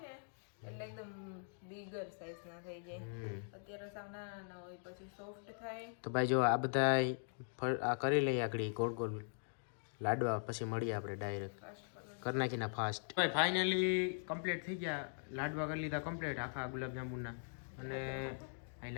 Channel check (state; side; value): silent; right; digital silence